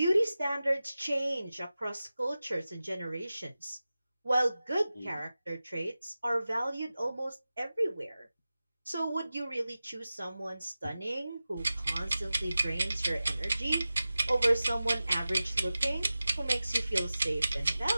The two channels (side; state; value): both; inverted; correlation -0.95